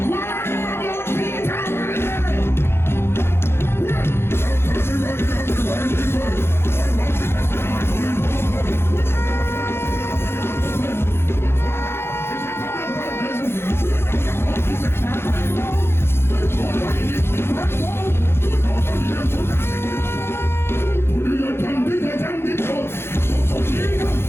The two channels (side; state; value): right; late; 0.12 ms